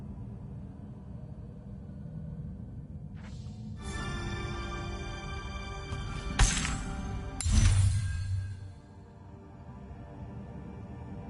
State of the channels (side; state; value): both; identical; correlation 1.00